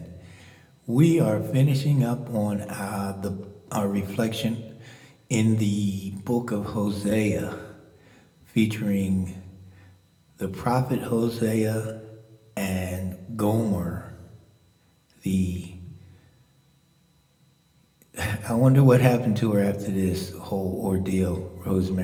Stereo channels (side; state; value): both; identical; correlation 1.00